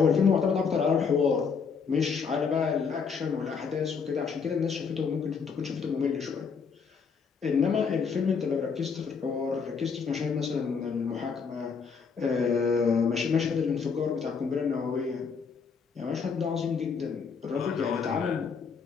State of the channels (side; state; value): right; quieter; 5.8 dB